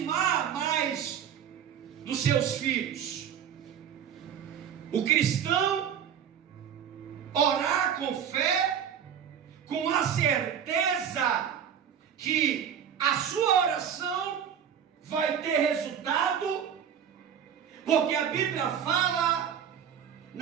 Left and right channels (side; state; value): left; quieter; 8.5 dB